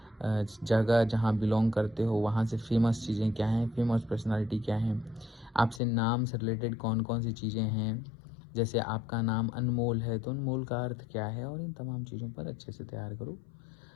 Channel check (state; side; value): drops out; right; at 5.8 s